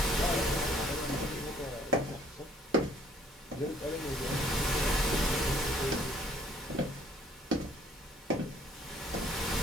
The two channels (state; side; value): normal; both; correlation 0.61